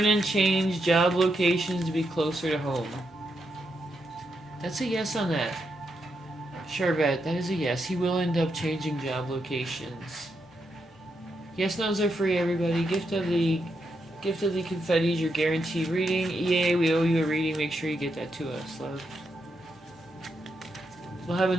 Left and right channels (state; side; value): normal; both; correlation 0.82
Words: change job locations to be closer to home? That's a yes on that. Charvette, that is a yes. He will end up changing job locations. Yes, no's are free, everybody. Gift of the confettis, your guaranteed reading. EA, we owe you a reading. Make sure you get that to us, love. We'll have